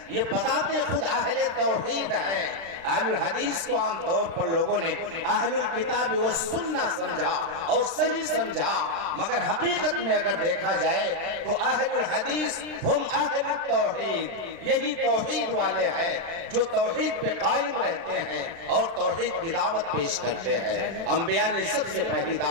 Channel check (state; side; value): late; left; 36 ms